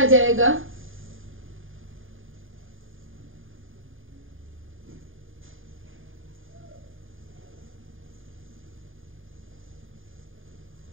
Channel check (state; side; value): late; left; 0.59 ms